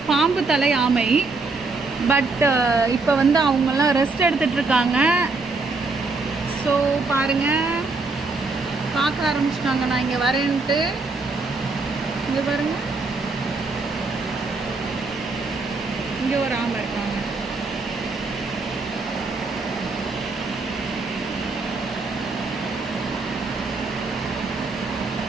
பாம்பு தலை ஆமை. பட் இப்போ வந்து அவங்கெல்லாம் ரெஸ்ட் எடுத்துகிட்டு இருக்காங்க. ஸோ பாருங்கள், பார்க்க ஆரம்பிச்சிட்டாங்க நான் இங்கே வரேன்ட்டு. இங்கே பாருங்கள், இங்கே ஒரு ஆமை இருக்காங்க.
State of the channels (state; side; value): quieter; left; 3.7 dB